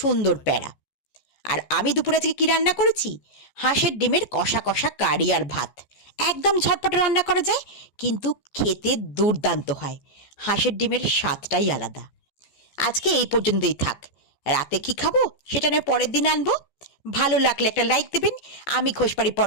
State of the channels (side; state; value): right; late; 14 ms